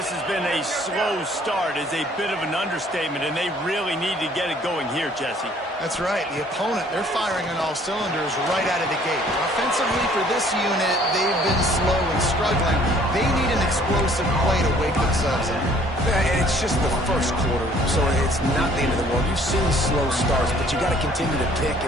has been a slow start is a bit of an understatement, and they really need to get it going here, Jesse. That's right. The opponent, they're firing on all cylinders right out of the gate. Offensively for this unit, they've been slow and struggling. They need an explosive play to wake themselves up. Yeah, and it's just the first quarter, so it's not the end of the world. You've seen slow starts, but you got to continue to pick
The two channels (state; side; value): normal; both; correlation 0.58